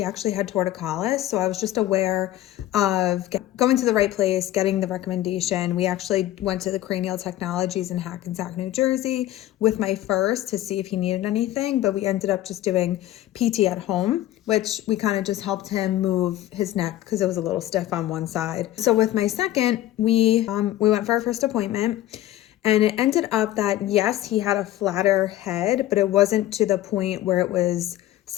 actually had torticollis. So I was just aware of going to the right place, getting the recommendation. We actually went to the Cranial Technologies in Hackensack, New Jersey with my first to see if he needed anything, but we ended up just doing PT at home, which we kind of just helped him move his neck because it was a little stiff on one side. So with my second, we went for our first appointment. And it ended up that, yes, he had a flatter head, but it wasn't to the point where it was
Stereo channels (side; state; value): right; quieter; 14.2 dB